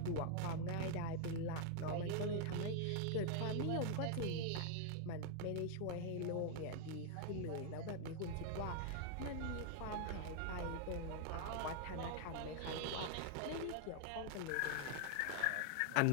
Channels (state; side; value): different; both; correlation 0.00